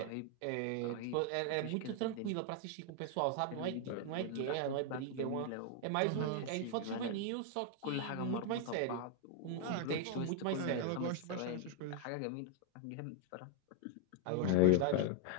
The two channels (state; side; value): different; both; correlation 0.00